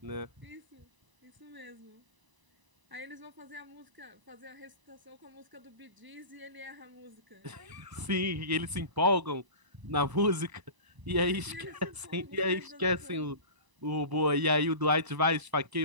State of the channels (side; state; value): left; late; 1.0 ms